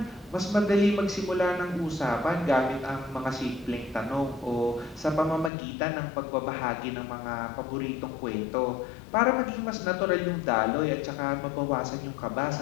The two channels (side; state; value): right; drops out; at 5.5 s